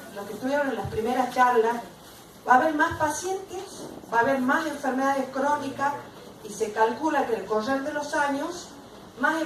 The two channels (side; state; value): both; identical; correlation 1.00